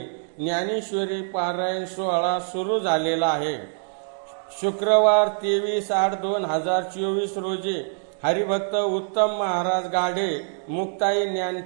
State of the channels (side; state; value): left; silent; digital silence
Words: ज्ञानेश्वरी पारायण सोहळा सुरू झालेला आहे। शुक्रवार 23/8/2024 रोजी हरिभक्त उत्तम महाराज गाढे मुक्ताई